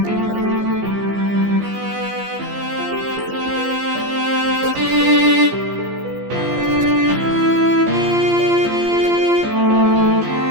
la ayuda de sus buenas manos. Su dulce aliento mis velas debe hinchar, o mi plan fracasará, que no era otro sino agradar.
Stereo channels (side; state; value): left; late; 15 ms